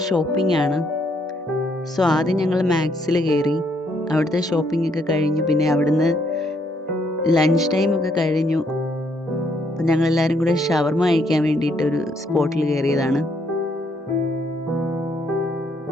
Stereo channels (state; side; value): normal; both; correlation 0.71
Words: ഷോപ്പിംഗ് ആണ്. സോ ആദ്യം ഞങ്ങൾ മാക്സിൽ കയറി, അവിടുത്തെ ഷോപ്പിംഗ് ഒക്കെ കഴിഞ്ഞു. പിന്നെ അവിടുന്ന് ലഞ്ച് ടൈം ഒക്കെ കഴിഞ്ഞു. അപ്പം ഞങ്ങൾ എല്ലാവരും കൂടെ ഷവർമ കഴിക്കാൻ വേണ്ടിയിട്ട് ഒരു സ്പോട്ടിൽ കയറിയതാണ്.